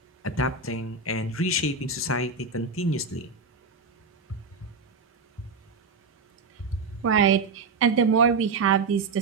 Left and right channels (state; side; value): quieter; left; 4.3 dB